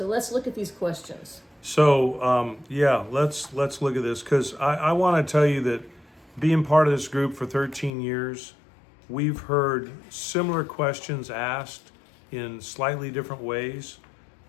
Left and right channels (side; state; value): right; drops out; at 7.9 s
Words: let's look at these questions. So let's look at this, because I want to tell you that being part of this group for 13 years, we've heard similar questions asked in slightly different ways,